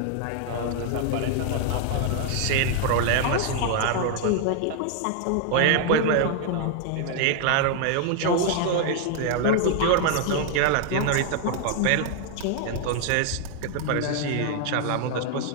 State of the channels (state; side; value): different; both; correlation 0.00